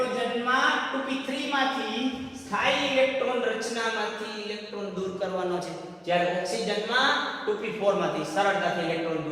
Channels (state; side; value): identical; both; correlation 1.00